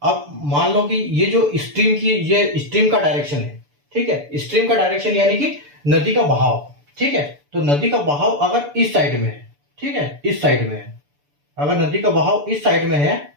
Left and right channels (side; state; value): left; late; 6.9 ms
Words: अब मान लो कि ये जो स्ट्रीम की, ये स्ट्रीम का डायरेक्शन है, ठीक है, स्ट्रीम का डायरेक्शन यानी कि नदी का बहाव, ठीक है। तो नदी का बहाव अगर इस साइड में है, ठीक है, इस साइड में है, अगर नदी का बहाव इस साइड में है,